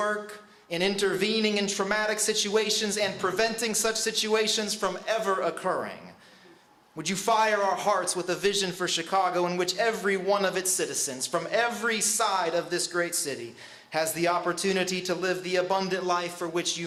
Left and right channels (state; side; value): identical; both; correlation 1.00